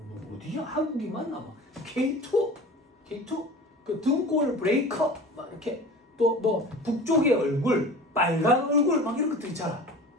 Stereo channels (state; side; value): normal; both; correlation 0.38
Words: 어디야? 한국이 맞나? 막 K2 그 등골 브레이커 막 이렇게 또 뭐 북쪽의 얼굴 빨간 얼굴 막 이런 것들 있잖아.